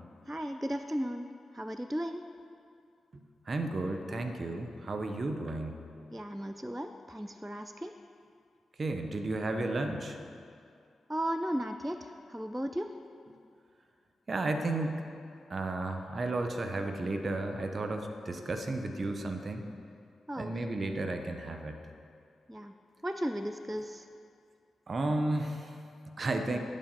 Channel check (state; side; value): normal; both; correlation 0.91